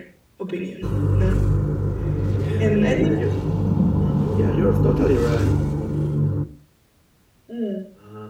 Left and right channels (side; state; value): both; identical; correlation 1.00